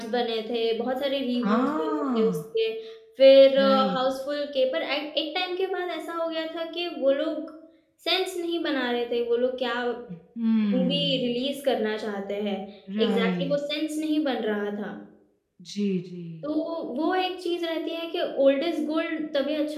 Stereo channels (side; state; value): both; identical; correlation 1.00